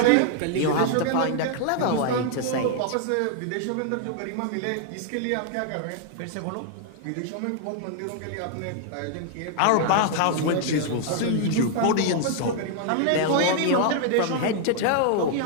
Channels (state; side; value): different; both; correlation 0.00